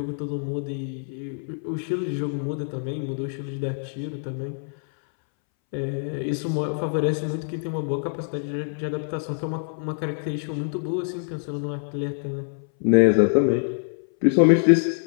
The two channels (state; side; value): silent; right; 62 dB below the other